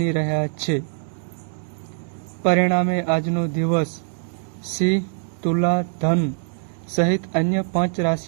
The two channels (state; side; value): silent; left; digital silence